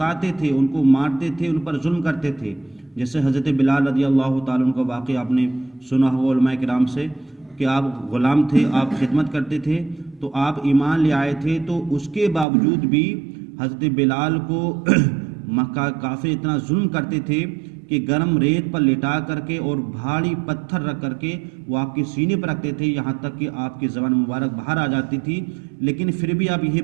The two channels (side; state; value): left; drops out; at 12.5 s